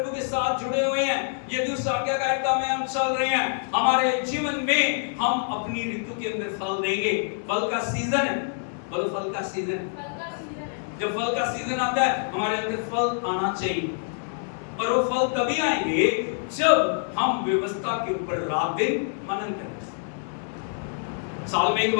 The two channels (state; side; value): silent; right; digital silence